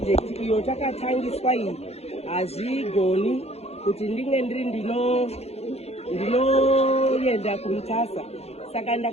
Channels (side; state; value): right; late; 0.30 ms